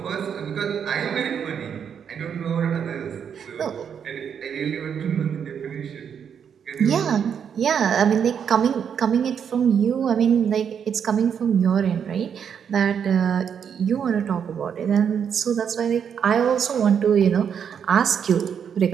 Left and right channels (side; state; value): left; quieter; 7.7 dB